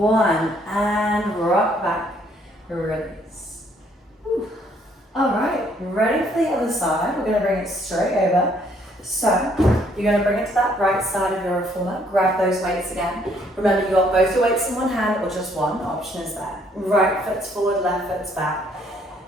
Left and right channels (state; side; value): normal; both; correlation 0.66